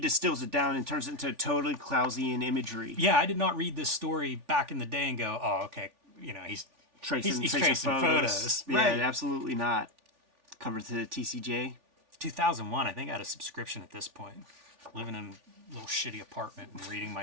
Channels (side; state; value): left; late; 3.4 ms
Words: it down and turns it into totally Clowesian imagery. Yeah, I did not read this story back in the day and go, oh, okay, he's tracing photos. Yeah, Right. absolutely not. Cover to the TCJ. 2001, I think I had a subscription at this point. Living in a little shitty apartment and reading